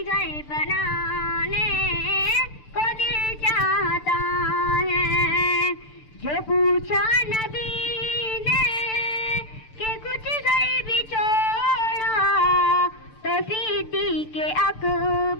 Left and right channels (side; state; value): right; late; 6.8 ms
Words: گھر بنانے کو دل چاہتا ہے. جو پوچھا نبی نے کہ کچھ گھر بھی چھوڑا تو صدیق